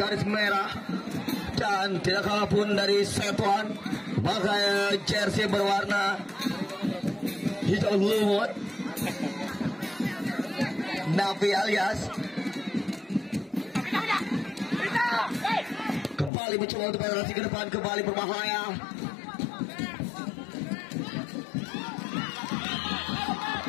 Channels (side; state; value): right; drops out; at 16.3 s